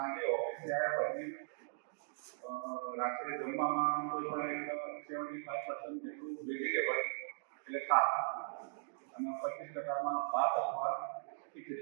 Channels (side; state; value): left; silent; digital silence